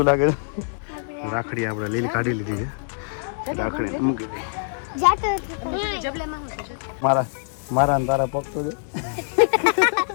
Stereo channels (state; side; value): silent; right; digital silence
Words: લાગે. રાખડી આપણે લીલી કાઢી લીધી છે. રાખડીને મૂકી દઈ. મારા તારા પગ તો જો